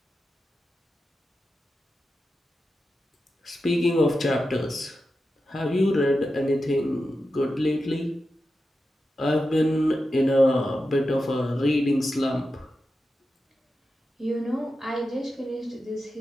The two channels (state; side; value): normal; both; correlation 0.90